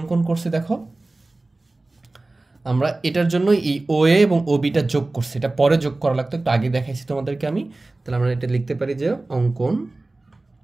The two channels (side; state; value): left; quieter; 3.0 dB